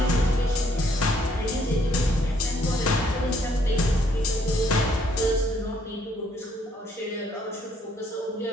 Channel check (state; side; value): normal; both; correlation 0.67